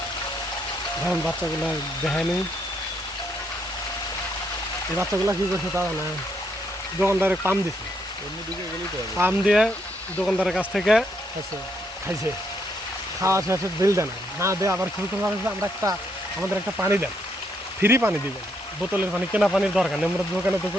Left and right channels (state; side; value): normal; both; correlation 0.75